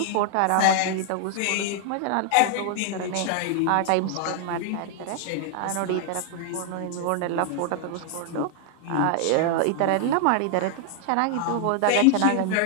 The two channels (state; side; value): different; both; correlation 0.00